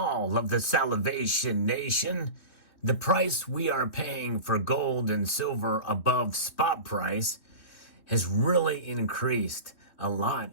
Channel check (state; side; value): late; right; 3.2 ms